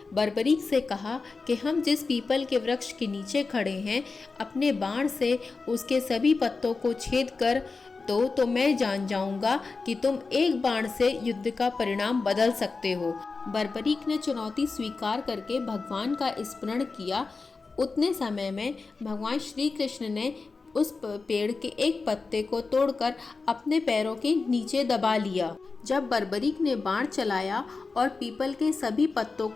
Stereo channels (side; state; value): right; quieter; 4.2 dB